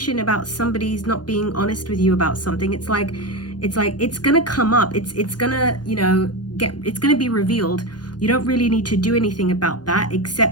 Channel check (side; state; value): right; late; 0.70 ms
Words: about somebody's not being honest with you about something, it's like it's gonna come up. It's gonna, you know, it's gonna be revealed. You don't really need to do anything about that,